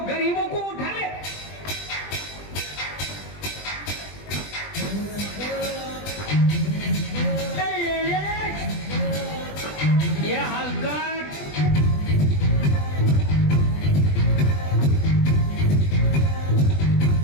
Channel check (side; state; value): right; late; 20 ms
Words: गरीबों को उठा ले। ये हलकट